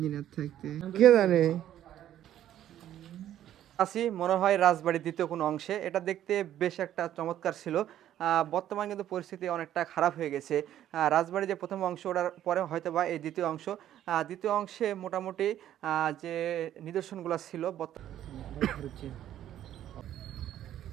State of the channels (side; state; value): left; quieter; 11.7 dB